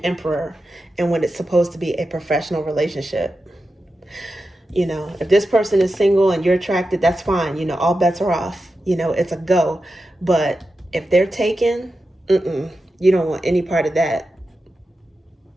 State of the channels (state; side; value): normal; both; correlation 0.91